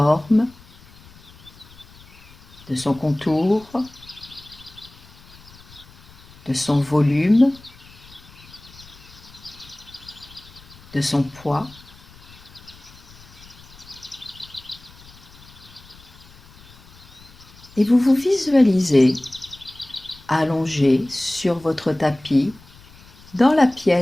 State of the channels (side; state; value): left; noise; rumble, 23 dB below the sound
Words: de son contour, de son volume, de son poids. Et vous vous visualisez allongé sur votre tapis dans la